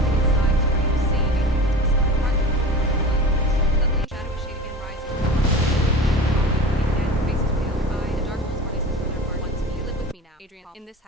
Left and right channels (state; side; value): normal; both; correlation 0.34